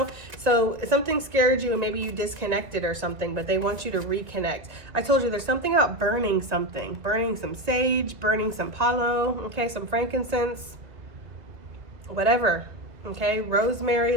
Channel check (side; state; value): left; late; 2.1 ms